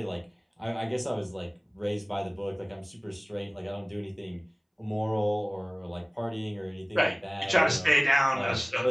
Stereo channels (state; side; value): identical; both; correlation 1.00